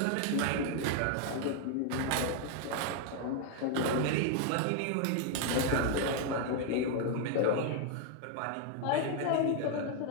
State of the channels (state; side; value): different; both; correlation 0.01